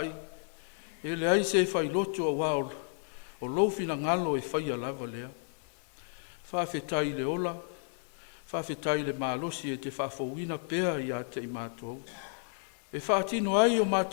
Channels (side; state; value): right; silent; 55 dB below the other